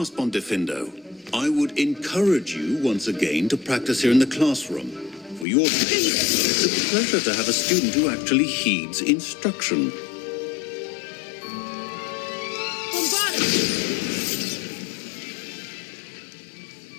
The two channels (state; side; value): drops out; right; at 5.5 s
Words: on Diffindo. I would encourage you once again to practice here in the classroom. For your sake, it's a pleasure to have a student who actually heeds instruction.